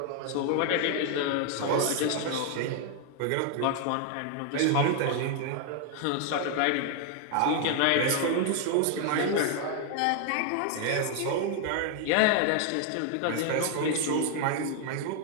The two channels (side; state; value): both; different; correlation 0.00